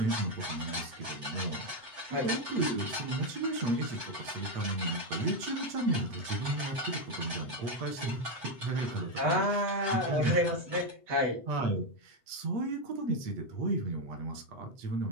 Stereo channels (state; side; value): late; left; 7.8 ms